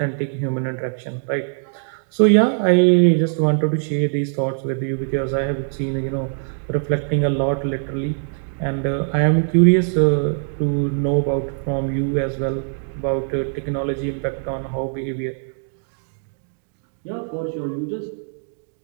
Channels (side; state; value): left; silent; digital silence